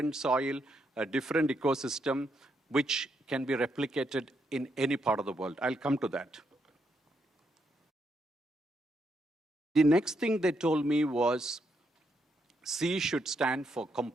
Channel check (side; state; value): both; normal; correlation 0.78